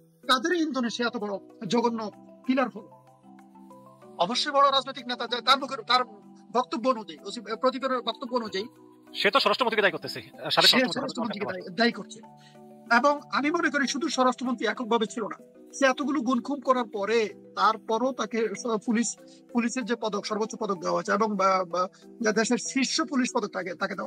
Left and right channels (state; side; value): identical; both; correlation 1.00